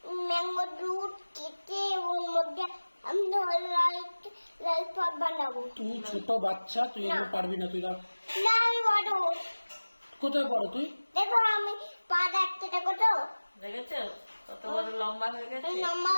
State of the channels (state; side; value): inverted; both; correlation -1.00